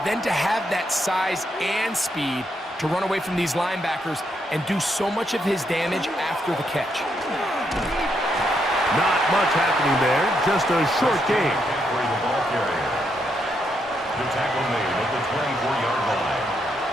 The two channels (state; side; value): normal; both; correlation 0.78